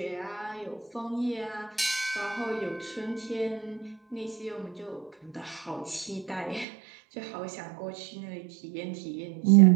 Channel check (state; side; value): drops out; left; at 6.7 s